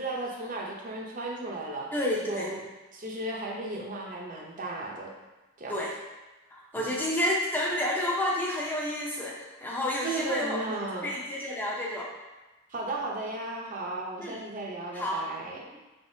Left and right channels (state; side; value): normal; both; correlation 0.19